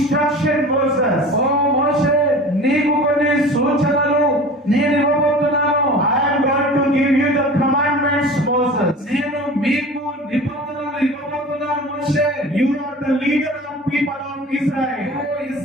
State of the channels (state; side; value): normal; both; correlation 0.38